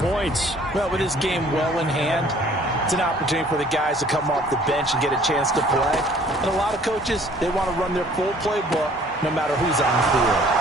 Well, with this game well in hand, it's an opportunity for the guys to come off the bench and get a chance to play. And a lot of coaches, they want to run their full playbook no matter who's on the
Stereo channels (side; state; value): both; normal; correlation 0.55